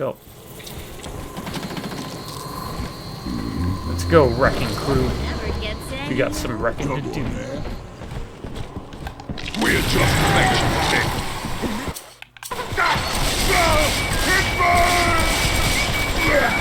Let's go, wrecking crew. We got some wrecking to do. We're just making it.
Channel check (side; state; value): both; identical; correlation 1.00